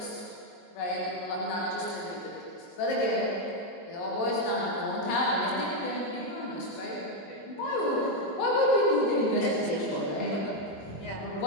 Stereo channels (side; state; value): right; late; 22 ms